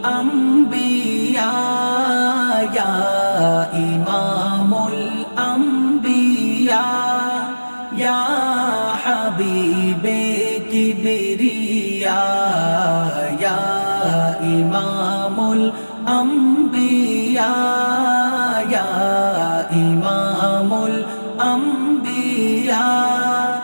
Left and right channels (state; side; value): inverted; both; correlation -1.00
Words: Ya Imamul Anbiya, Ya Habibe Kibriya, Ya Imamul Anbiya, Ya Imamul Anbiya,